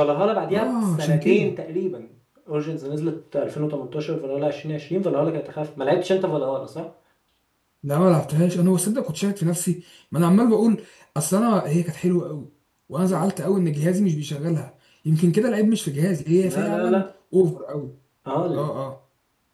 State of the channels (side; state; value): both; identical; correlation 1.00